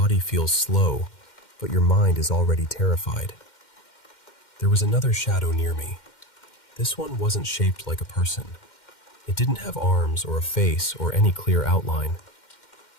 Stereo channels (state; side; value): late; right; 2.1 ms